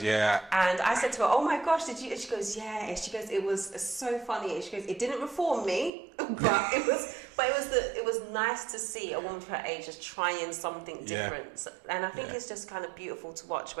yeah. And I said to her, "Oh my gosh, did you?" And she goes, "Yeah." And she goes, "It was so funny." And she goes, "It didn't reform me, but it was nice to see a woman of her age just trying something different." And I think it's just kind of beautiful to watch.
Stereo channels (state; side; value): drops out; left; at 5.9 s